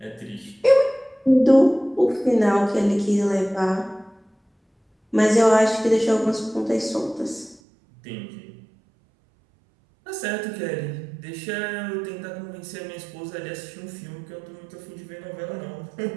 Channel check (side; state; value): left; drops out; at 7.6 s